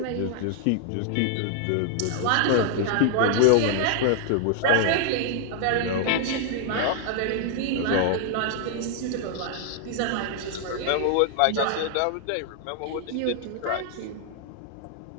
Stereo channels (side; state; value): both; different; correlation 0.00